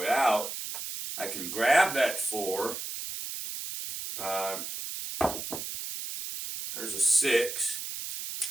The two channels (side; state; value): right; noise; hiss, 6 dB below the sound